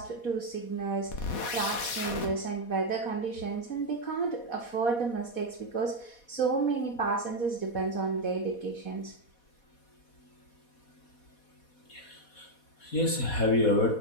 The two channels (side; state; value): right; late; 4.2 ms